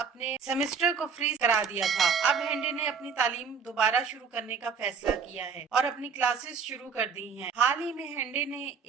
सेमेस्टर को फ्रीज करा दिया था। अब हैंडे ने अपनी तालीम दोबारा शुरू करने का फैसला किया है और अपनी क्लासेस शुरू कर दी हैं। हाल ही में हैंडे ने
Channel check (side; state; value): left; quieter; 5.8 dB